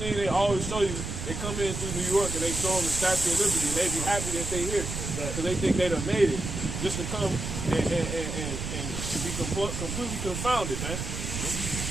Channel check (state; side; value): noise; right; rumble, 5 dB below the sound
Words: they always show you, they come in through New York and they show them the Statue of Liberty, and they be happy that they here, because they think they done made it, just to come and be completely confounded, man.